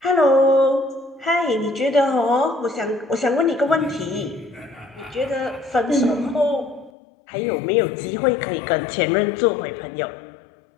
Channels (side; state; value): right; drops out; at 6.9 s